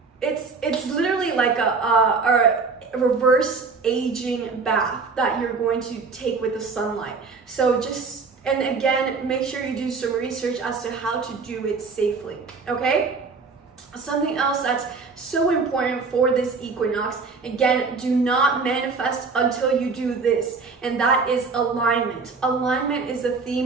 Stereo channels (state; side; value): quieter; left; 4.6 dB